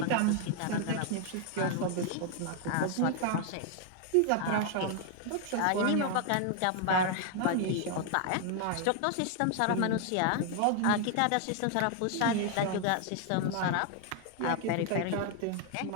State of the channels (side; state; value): both; different; correlation 0.00